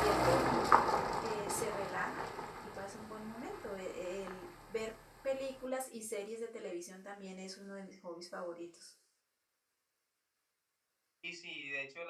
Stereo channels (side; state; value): both; identical; correlation 1.00